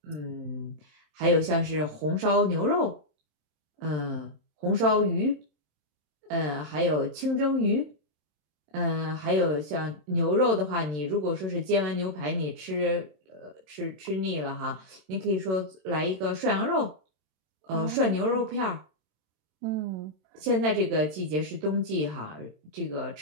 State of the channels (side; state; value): left; late; 27 ms